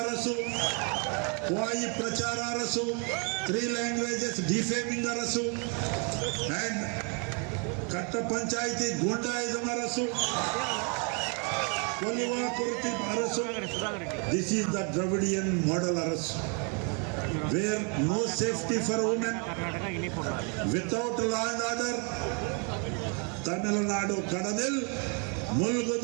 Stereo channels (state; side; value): quieter; left; 36.5 dB